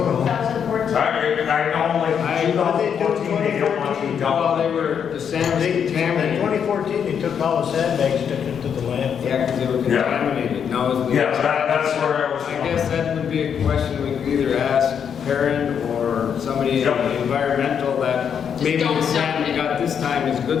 know. 2014. I know, like, 2014, they don't want to be Well, done. they were, the sand was In contaminated. 2014, they took all the sandbags, took it to the landfill. Yeah, because they were Yeah. contaminated. Now, is the- Yeah, that's where I was I going. guess that would be a question we could either ask parent or somebody in Yep. the environmental that maybe don't the dump sand we it. got this time is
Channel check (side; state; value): right; quieter; 7.7 dB